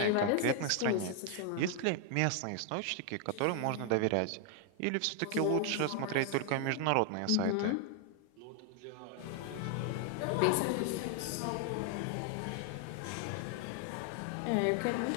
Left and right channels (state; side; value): different; both; correlation 0.00